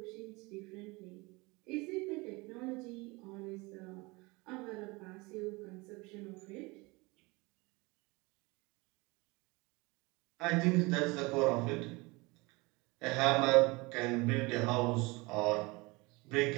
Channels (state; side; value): quieter; left; 24.8 dB